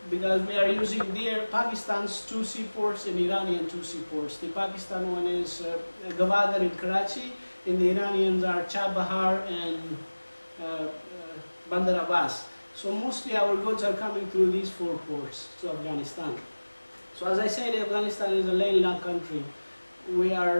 because we are using Pakistan's 2 seaports and Iranian 2 seaports. The Pakistan one is Gwadar in Karachi, and the Iranians are Chabahar and Bandar Abbas. So mostly our goods are coming through these 4 ports to Afghanistan. So as I said, Afghanistan is a landlocked country. We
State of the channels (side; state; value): both; inverted; correlation -1.00